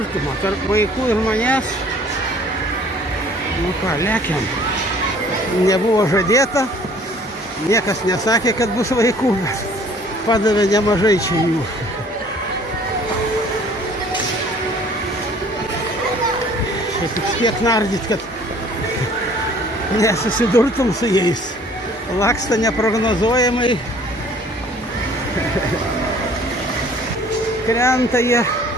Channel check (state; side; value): normal; both; correlation 0.54